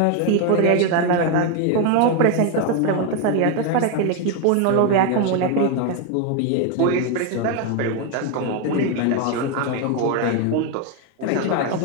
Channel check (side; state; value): both; different; correlation 0.01